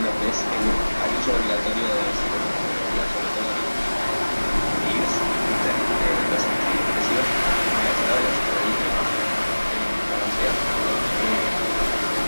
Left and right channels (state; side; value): inverted; both; correlation -1.00